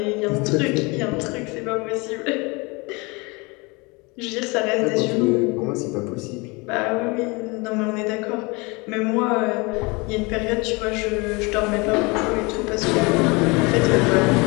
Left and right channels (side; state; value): right; quieter; 27.0 dB